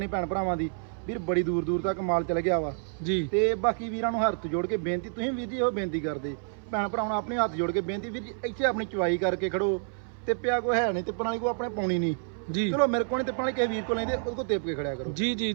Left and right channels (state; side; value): silent; left; 59 dB below the other